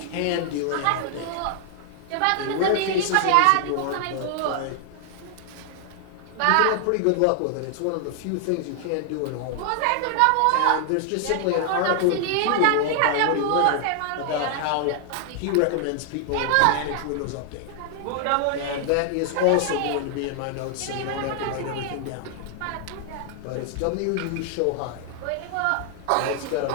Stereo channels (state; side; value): different; both; correlation 0.00